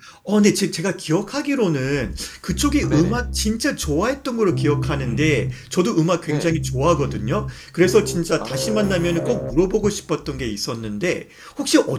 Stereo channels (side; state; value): both; identical; correlation 1.00